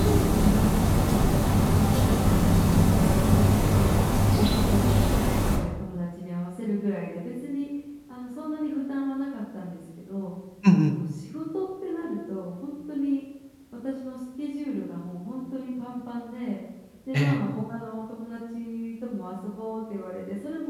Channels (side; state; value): both; identical; correlation 1.00